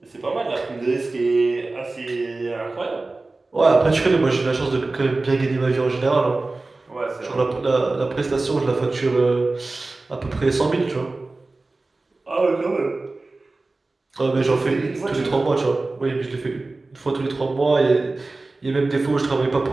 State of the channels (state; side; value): quieter; left; 3.3 dB